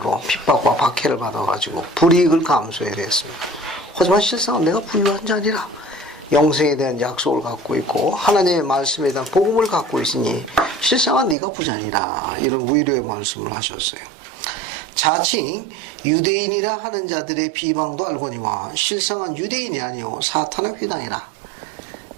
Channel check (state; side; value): drops out; left; at 11.4 s